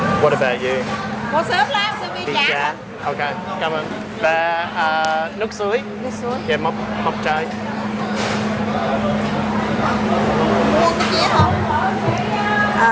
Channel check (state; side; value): identical; both; correlation 1.00